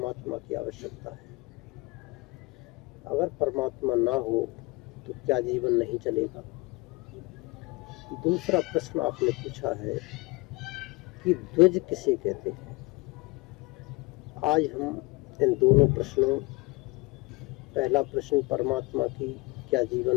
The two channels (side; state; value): right; quieter; 24.3 dB